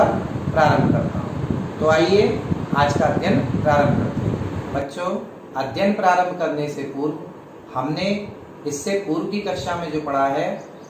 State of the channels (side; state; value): both; identical; correlation 1.00